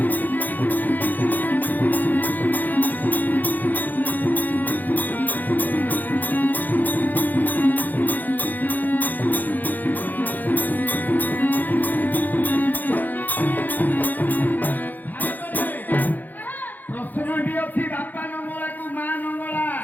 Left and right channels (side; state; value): right; late; 0.084 ms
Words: ପ୍ରଶ୍ନଟି ଅଛି ବାପା ନଙ୍ଗଳାକୁ ମା ନଙ୍ଗଳା